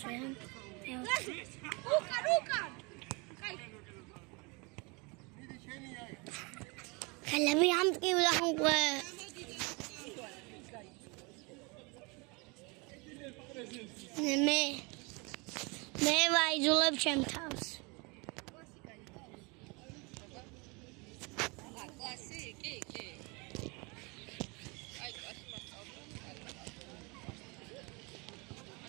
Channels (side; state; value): left; quieter; 29.0 dB